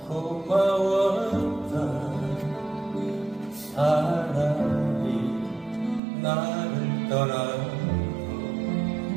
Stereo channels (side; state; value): left; drops out; at 6.0 s